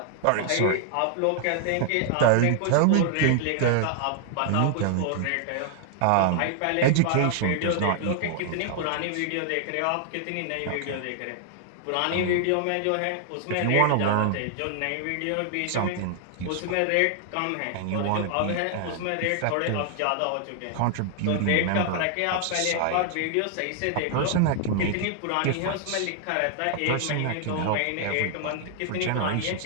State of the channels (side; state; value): both; different; correlation 0.00